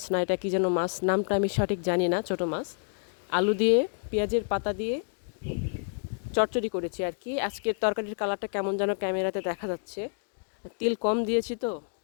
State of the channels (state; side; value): silent; right; digital silence